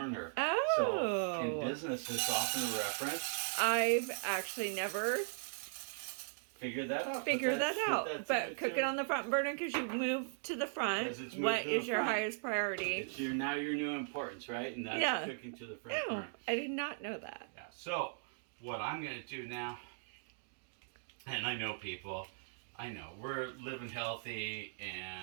Oh. So in business, it's often a reference. I've actually never figured that out. But cook it on the front burner because you move to the front. What is your highest priority? It's now your new importance, right? And that's cooking to the front burner. I did not know that. Yeah. So what I'm going to do now, and I know people, we're living healthy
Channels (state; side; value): silent; left; digital silence